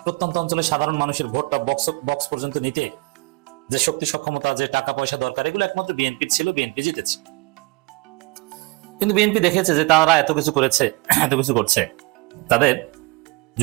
প্রত্যন্ত অঞ্চলের সাধারণ মানুষের ভোটটা বক্স পর্যন্ত নিতে যে শক্তি সক্ষমতা, যে টাকা পয়সা দরকার, এগুলো একমাত্র বিএনপি ছিল, বিএনপি জিতেছে। কিন্তু বিএনপি দেখেছে যে তারা এত কিছু করেছে, এত কিছু করছে, তাদের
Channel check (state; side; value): quieter; left; 25.1 dB